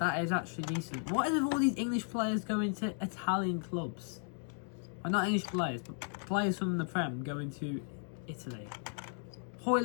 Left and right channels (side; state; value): right; silent; 54 dB below the other